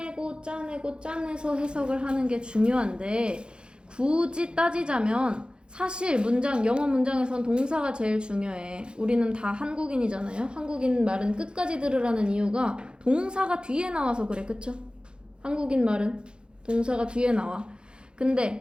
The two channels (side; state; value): left; late; 0.051 ms